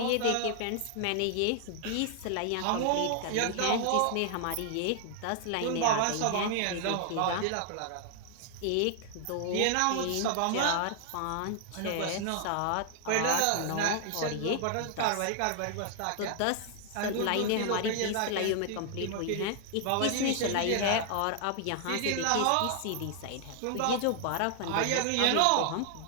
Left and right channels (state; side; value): different; both; correlation 0.00